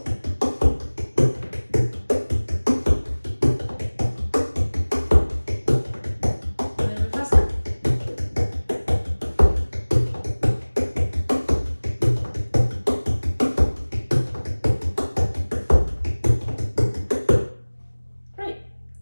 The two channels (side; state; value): both; inverted; correlation -1.00